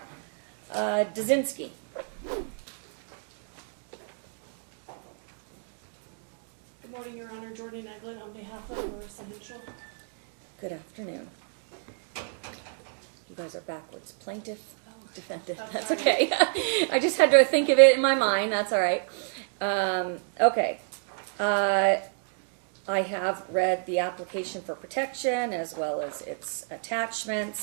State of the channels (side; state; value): left; silent; 58 dB below the other